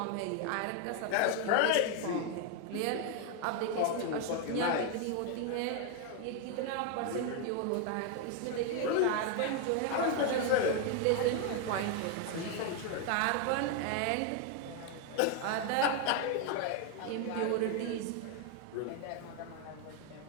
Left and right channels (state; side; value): different; both; correlation 0.01